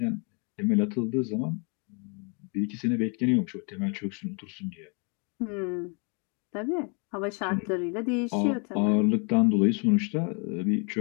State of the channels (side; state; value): right; quieter; 35.4 dB